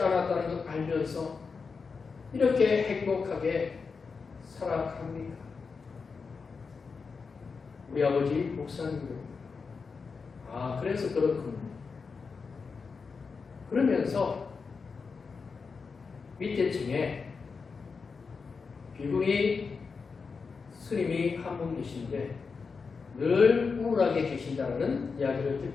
않았다는 걸 알면서 이렇게 행복하게 살아갑니까? 우리 아버지 목사님입니다. 아, 그래서 그렇군요. 그러면서 밑에 층에 비구니 스님이 한 분 계신데 늘 우울하게 계신다는 이야기를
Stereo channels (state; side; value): quieter; right; 5.0 dB